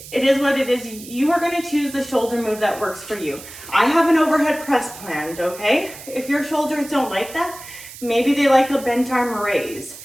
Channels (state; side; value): noise; right; hiss, 15 dB below the sound